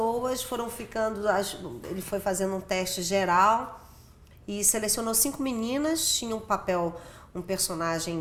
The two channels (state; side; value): identical; both; correlation 1.00